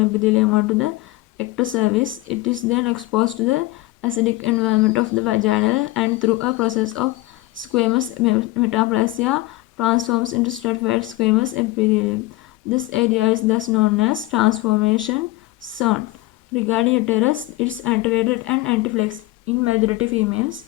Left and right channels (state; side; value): quieter; right; 19.0 dB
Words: epithelium onto the ectocervix. It is then exposed to the acidic environment of the vaginal and through a process of squamous metaplasia transforms into stratified squamous epithelium. This area is thus known as transformation zone. Regarding uterus, it is antevated and anteflexed in majority